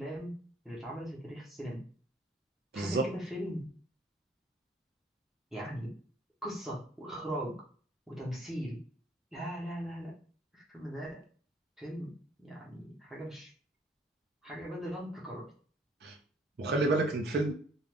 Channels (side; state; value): both; normal; correlation 0.61